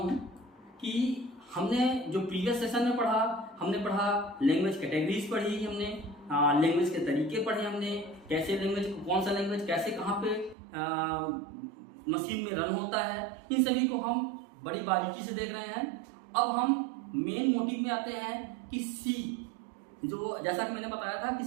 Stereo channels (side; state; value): left; drops out; at 10.6 s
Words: कि हमने जो प्रीवियस सेशन में हमने पढ़ा लैंग्वेज कैटेगरीज पढ़ी, हमने लैंग्वेज के तरीके पढ़े, हमने कैसे लैंग्वेज कौन सा लैंग्वेज कैसे कहाँ पे मशीन में रन होता है, इन सभी को हम बड़ी बारीकी से देख रहे हैं। अब हम मेन मोटिव में आते हैं कि सी, जो जैसा कि मैंने बताया था कि